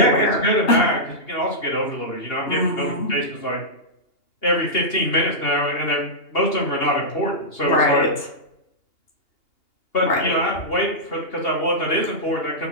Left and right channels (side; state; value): right; late; 2.8 ms